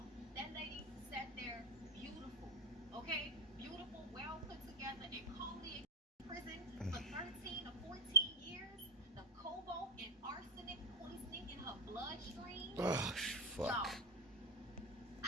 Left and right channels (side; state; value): both; normal; correlation 0.13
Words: That lady sat there beautiful. Okay? Beautiful, well put together, and calmly in prison for 13 or 14 years the cobalt and arsenic poisoning in her bloodstream. Oh, fuck. Y'all,